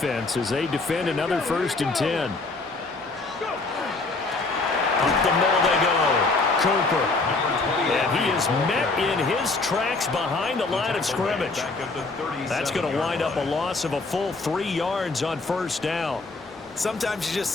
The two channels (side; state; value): right; quieter; 3.6 dB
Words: as they defend another 1st and 10. Up the middle they go. Cooper. And he is met in his tracks behind the line of scrimmage. That's going to wind up a loss of a full 3 yards on 1st down. Sometimes you just